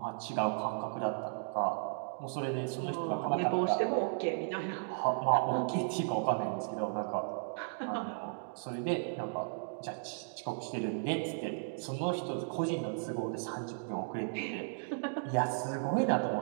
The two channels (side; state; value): left; silent; digital silence